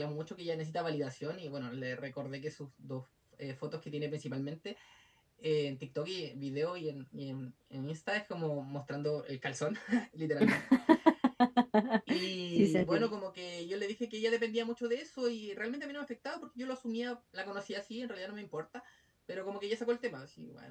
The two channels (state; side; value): identical; both; correlation 1.00